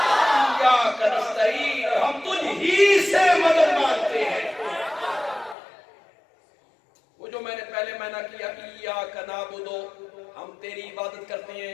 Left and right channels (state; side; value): drops out; right; at 5.6 s